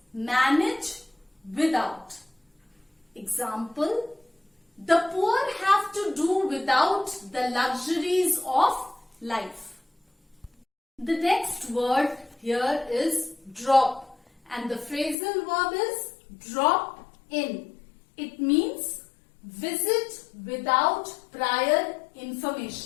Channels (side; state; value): right; drops out; at 15.2 s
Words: manage without. Example, the poor have to do without the luxuries of life. The next word here is drop, and the phrasal verb is drop in. It means visit without prior